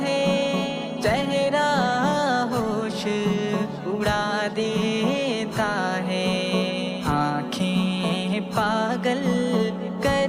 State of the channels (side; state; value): both; identical; correlation 1.00